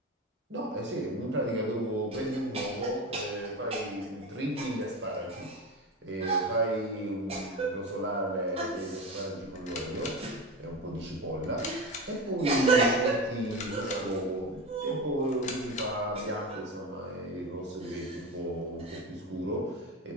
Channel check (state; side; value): normal; both; correlation 0.24